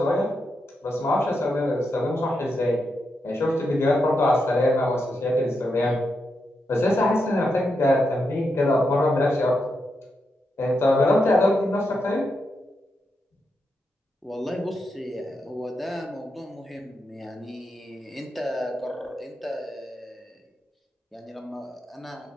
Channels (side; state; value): both; normal; correlation 0.84